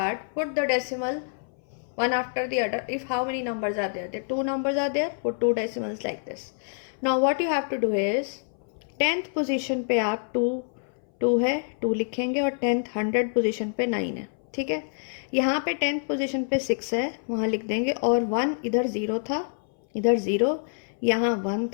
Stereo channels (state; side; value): silent; right; 59 dB below the other